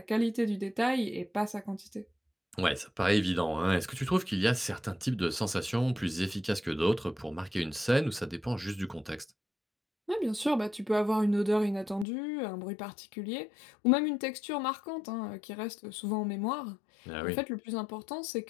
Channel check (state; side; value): drops out; right; at 12.1 s